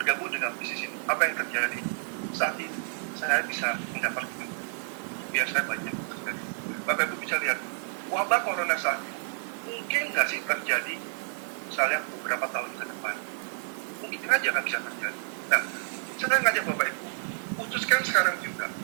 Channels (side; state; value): left; silent; digital silence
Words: dengan bisnis ini. Apa yang terjadi saat ini? Saya bisa mendapatkan biar saya banyak terjadi. Bapak Ibu bisa lihat wabah corona saat ini mungkin nggak sih terjadi misalnya beberapa tahun ke depan, mungkin aja nggak bisa terjadi. Nah, saya ngajak Bapak Ibu putuskan sekarang juga